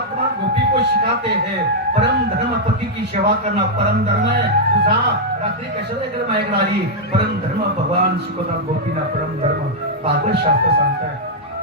गोपी को सिखाते हैं परम धर्म, पति की सेवा करना परम धर्म है. तुझा रात्री कशाला इकडे माझ्याकडे आली, परम धर्म भगवान शिकवतात गोपीना, परम धर्म भागवत शास्त्र सांगताय.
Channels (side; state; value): both; normal; correlation -0.05